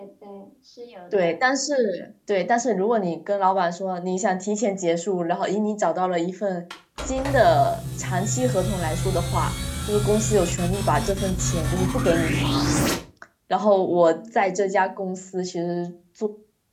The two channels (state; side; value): identical; both; correlation 1.00